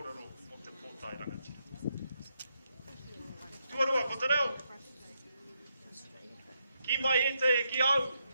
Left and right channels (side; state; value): both; inverted; correlation -0.80